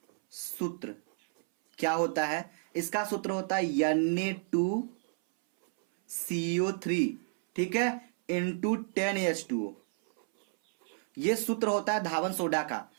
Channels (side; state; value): left; silent; 57 dB below the other